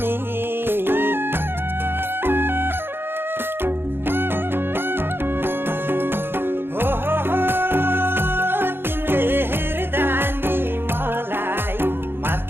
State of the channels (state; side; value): late; left; 0.10 ms